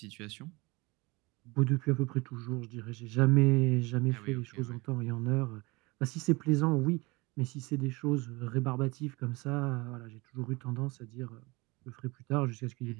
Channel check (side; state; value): left; quieter; 24.4 dB